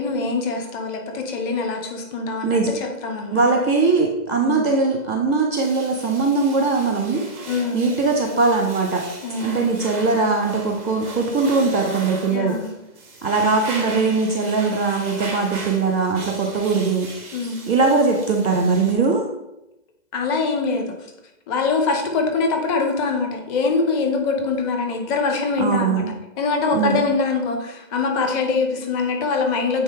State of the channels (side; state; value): right; late; 2.0 ms